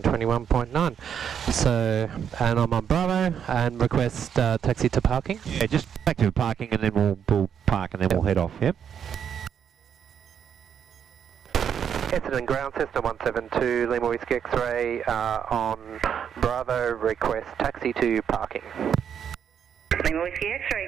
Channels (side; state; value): left; quieter; 8.1 dB